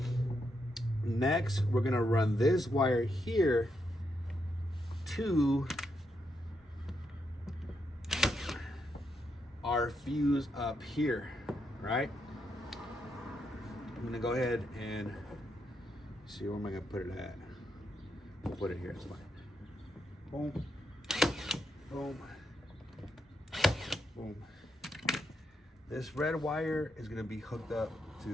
Next, we're gonna run this wire here to our fuse up here, right? I'm gonna go ahead and see, where am I gonna put it at? We'll put it here, it's fine. Boom, boom, boom. This red wire is gonna be hooked up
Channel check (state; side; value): normal; both; correlation 0.81